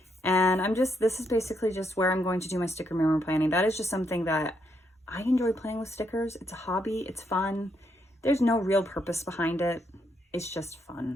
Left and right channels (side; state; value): both; normal; correlation 0.77